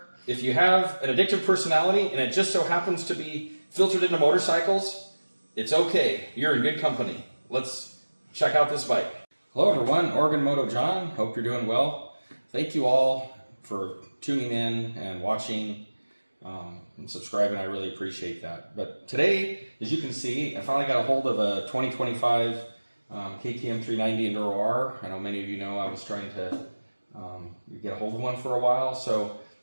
if you have an addictive personality and it just so happens to be filtered into motorcycles, it's okay, you're in good company. Let's check out this bike. Hello everyone, Oregon Moto John, hope you're doing well. Thank you all for tuning in and watching and subscribing, I really appreciate that. But today, as you can see, I finally got a hold of a 2025 KTM 390 Enduro R. I know many of you know I was trying to get a hold of one for a while, so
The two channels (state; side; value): inverted; both; correlation -1.00